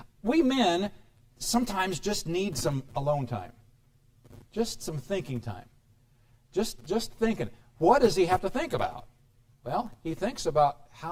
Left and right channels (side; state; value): both; identical; correlation 1.00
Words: We men sometimes just need some alone time. Just some thinking time. Just thinking. What does he have to think about? Well, he thinks about